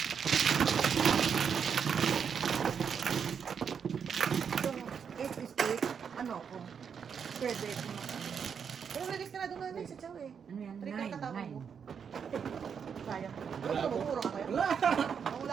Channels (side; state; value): left; quieter; 7.0 dB